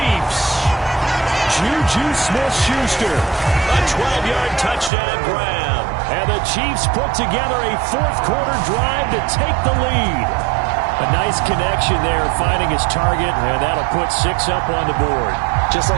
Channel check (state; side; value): drops out; left; at 4.9 s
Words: Juju Smith-Schuster. A 12-yard touchdown grab. And the Chiefs put together a 4th quarter drive to take the lead. A nice connection there, finding his target, and that'll put 6 up on the board. Just